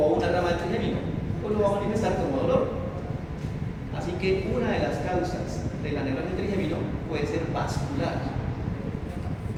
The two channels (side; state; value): both; identical; correlation 1.00